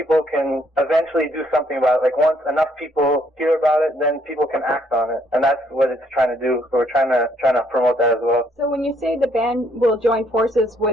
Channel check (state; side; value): normal; both; correlation 0.68